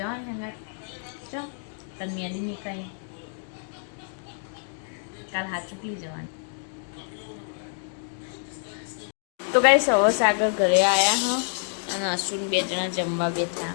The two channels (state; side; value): silent; right; 58 dB below the other